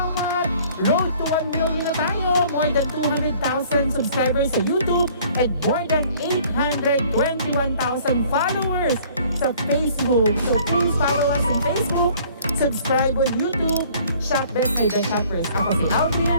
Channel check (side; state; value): both; inverted; correlation -0.55